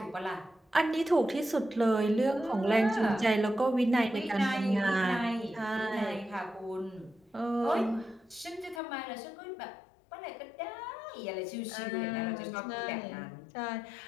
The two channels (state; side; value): drops out; right; at 8.8 s